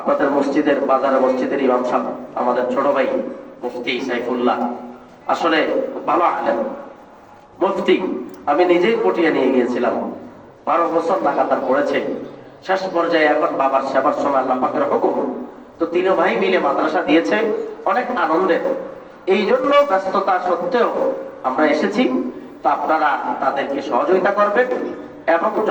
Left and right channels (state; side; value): identical; both; correlation 1.00